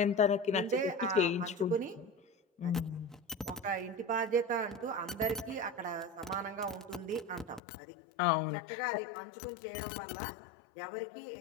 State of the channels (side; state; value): right; drops out; at 7.6 s